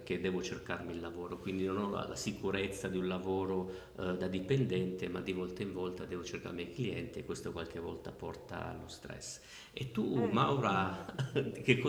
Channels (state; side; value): identical; both; correlation 1.00